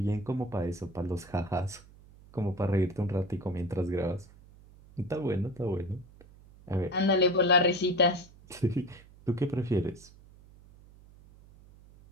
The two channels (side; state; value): right; noise; hum, 23 dB below the sound